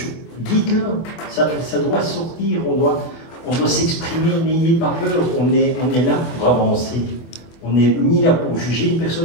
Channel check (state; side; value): late; right; 24 ms